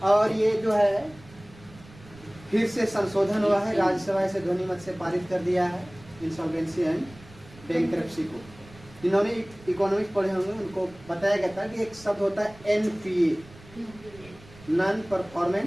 और ये जो है फिर से संशोधन हुआ है, राज्यसभा से ध्वनिमत से पारित कर दिया है इंसॉल्वेंसी एंड बैंक्रप्सी को। जिन्होंने इकोनॉमिक्स पढ़े होंगे उनको बताया गया था कि एक शब्द होता है एनपीए, नॉन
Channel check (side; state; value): right; noise; rumble, 22 dB below the sound